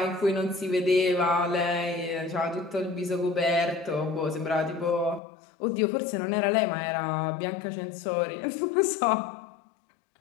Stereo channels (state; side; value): drops out; right; at 5.2 s